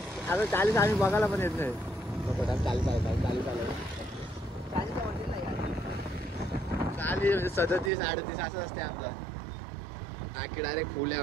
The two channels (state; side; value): drops out; left; at 7.9 s